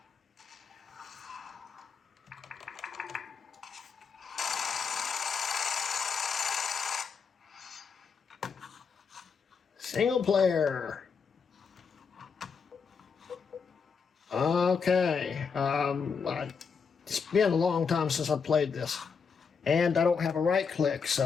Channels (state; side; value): quieter; right; 5.8 dB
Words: Single player. Okay. It's been a long time since I played this. And I don't have a right click,